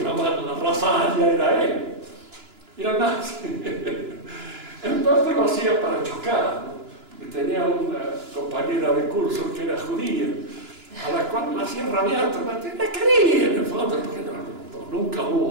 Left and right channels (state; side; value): late; left; 2.9 ms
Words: llamar la raza aria, era él. Era nazi. En parte lo hacía para chocar, ¿no? Porque tenía una compañera de curso que era judía, a la cual la hacía rabiar, la quería en el fondo, porque nunca